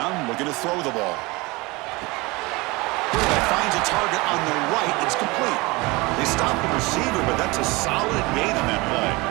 looking to throw the ball. Quarterback finds a target on the right. It's complete. They stop the receiver, but that's a solid gain on that play.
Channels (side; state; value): left; quieter; 23.9 dB